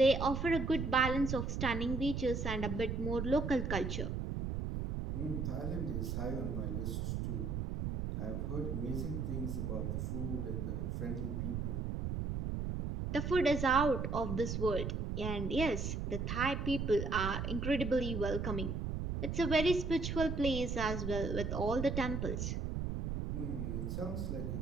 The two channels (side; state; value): right; noise; rumble, 2 dB below the sound